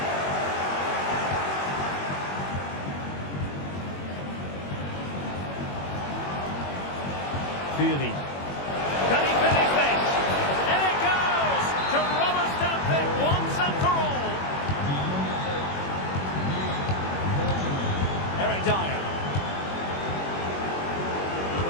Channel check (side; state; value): right; late; 21 ms